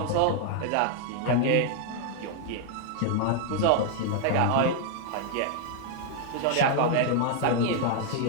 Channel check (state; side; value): different; both; correlation 0.00